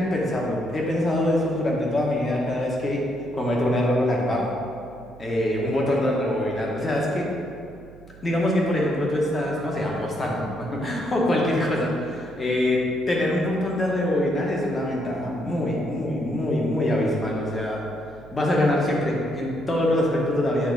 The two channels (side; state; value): right; noise; hum, 21 dB below the sound